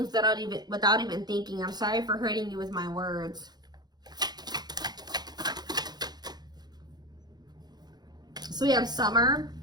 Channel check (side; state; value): left; late; 0.20 ms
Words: without even thinking. I'm sorry for hurting you with my words. So we have summer,